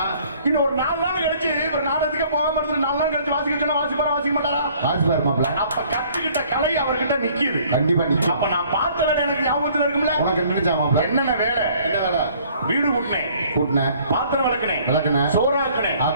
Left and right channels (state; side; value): inverted; both; correlation -0.57